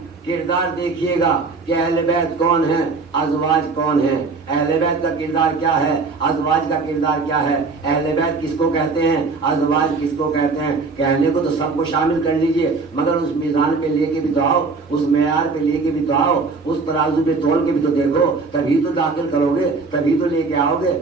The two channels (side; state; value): left; quieter; 4.2 dB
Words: کردار دیکھیے گا کہ اہل بیت کون ہیں، ازواج کون ہیں، اہل بیت کا کردار کیا ہے، ازواج کا کردار کیا ہے، اہل بیت کس کو کہتے ہیں، ازواج کس کو کہتے ہیں. کہنے کو تو سب کو شامل کر لیجئے، مگر اس میزان پہ لے کے بھی تو آؤ، اس معیار پہ لے کے بھی تو آؤ، اس ترازو پہ تول کے بھی تو دیکھو، تبھی تو داخل کرو گے، تبھی تو لے کے آؤ گے